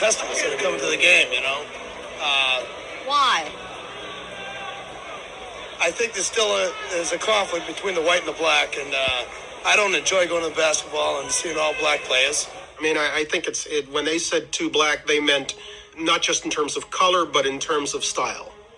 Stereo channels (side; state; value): both; identical; correlation 1.00